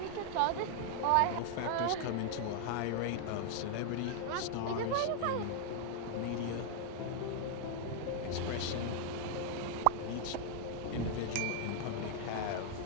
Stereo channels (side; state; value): both; different; correlation 0.00